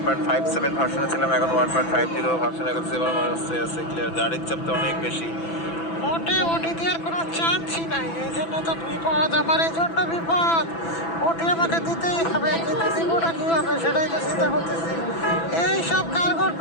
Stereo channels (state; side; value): late; right; 6.0 ms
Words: ভার্সনে ছিলাম, এখন 1.50 ভার্সনে এখন 7 আছে ক্লিয়ার। গাড়ির চাপ তো অনেক বেশি। ওটি দেওয়ার কোনো চান্সই নাই, এই জন্য তো বিপদ আমার, এই জন্য বিপদ। ওটি আমাকে দিতেই হবে, কিন্তু জীবনটা কী হবে সেটাই তো চিন্তা করতেছি। এই সব কারগর